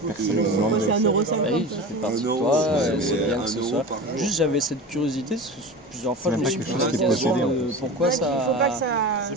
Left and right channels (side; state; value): both; normal; correlation 0.30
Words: personne ne peut l'enlever. Oui, ça fait partie de toi, c'est bien que ce soit. Juste j'avais cette curiosité, plusieurs fois je me suis posé la question de pourquoi